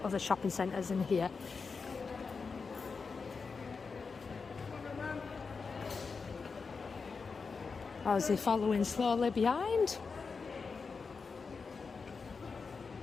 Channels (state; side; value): quieter; right; 4.9 dB